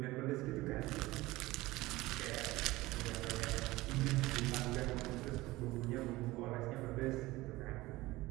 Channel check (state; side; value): quieter; left; 19.2 dB